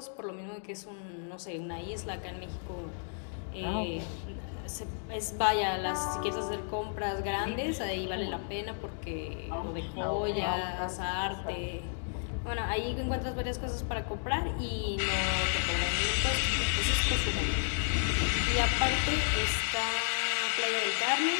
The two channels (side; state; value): right; silent; digital silence